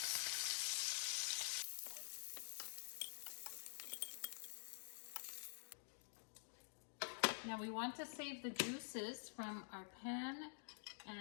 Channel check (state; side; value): silent; right; digital silence